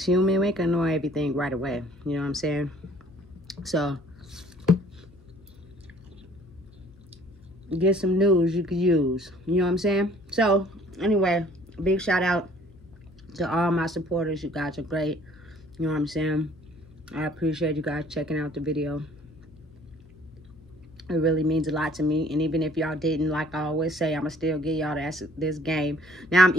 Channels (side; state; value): left; noise; hum, 26 dB below the sound